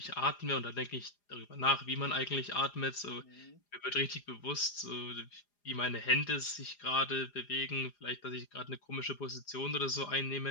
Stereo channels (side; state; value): right; late; 4.9 ms